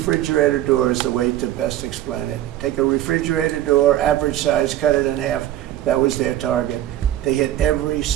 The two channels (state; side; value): quieter; left; 13.1 dB